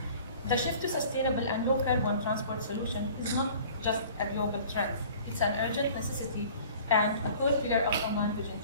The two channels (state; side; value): inverted; both; correlation -0.48